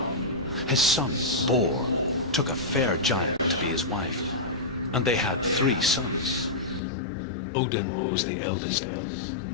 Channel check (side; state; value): right; drops out; at 6.8 s